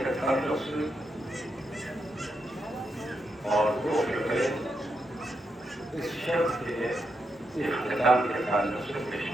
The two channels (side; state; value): both; normal; correlation 0.83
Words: کے تعلق سے اور دو شبے اس شب کے اختتام کے تعلق سے پیش